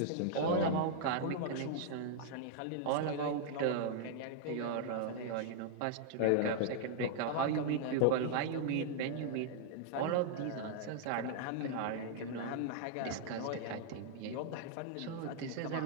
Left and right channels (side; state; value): both; different; correlation -0.01